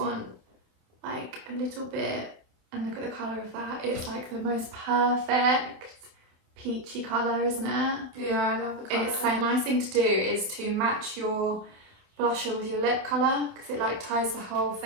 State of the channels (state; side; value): late; left; 27 ms